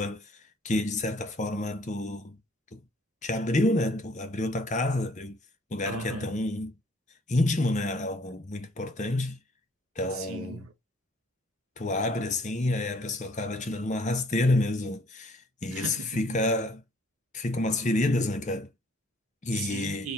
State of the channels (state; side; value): normal; both; correlation 0.60